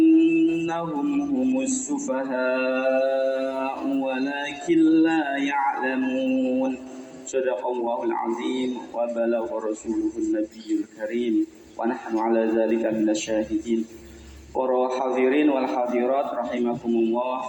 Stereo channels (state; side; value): identical; both; correlation 1.00